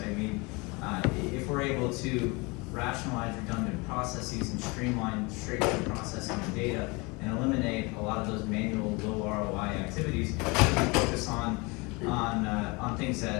mean, if we're able to rationalize redundant processes and streamline straight-through processing of data and eliminate a lot of those manual low ROI activities, we can focus on things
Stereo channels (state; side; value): quieter; right; 27.1 dB